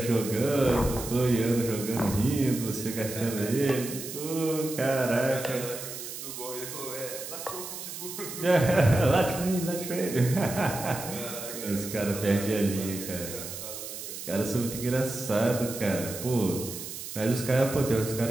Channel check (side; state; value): right; noise; hiss, 9 dB below the sound